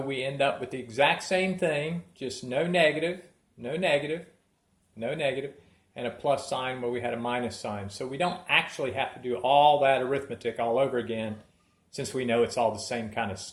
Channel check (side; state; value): both; identical; correlation 1.00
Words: end up with the exact same thing, just no negative, no negative, no negative, and a plus sign where we had a minus sign. So we don't actually have to do all that arithmetic all over again, since we know it's all the same kind of